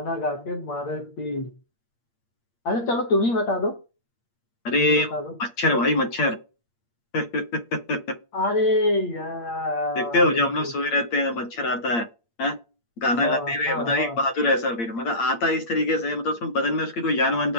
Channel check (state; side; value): late; right; 8.6 ms